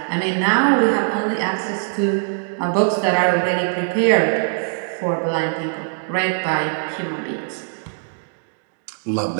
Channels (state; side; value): silent; left; digital silence